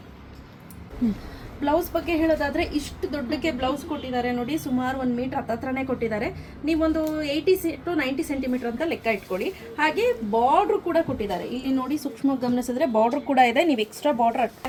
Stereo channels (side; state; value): both; identical; correlation 1.00